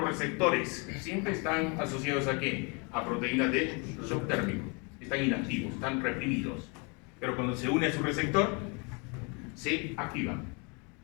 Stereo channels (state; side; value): quieter; right; 32.6 dB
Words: receptores? Siempre están asociados ¿a qué? A proteínas de shock térmico. Están inactivos, están reprimidos. Pero cuando se une a su receptor, se activan.